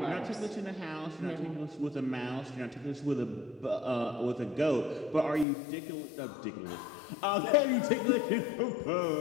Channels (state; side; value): drops out; right; at 5.5 s